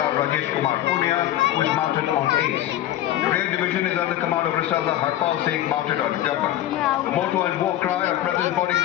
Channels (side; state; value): right; quieter; 13.2 dB